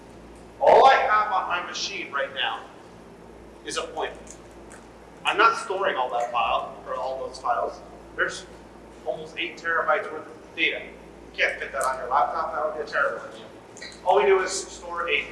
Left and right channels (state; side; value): identical; both; correlation 1.00